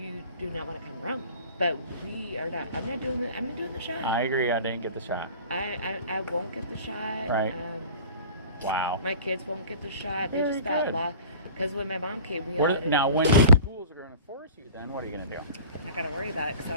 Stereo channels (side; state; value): both; inverted; correlation -0.43